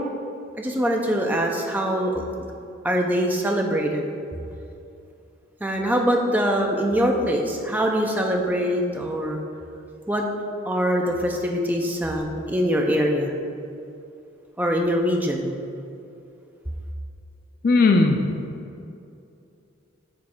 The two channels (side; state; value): both; normal; correlation 0.65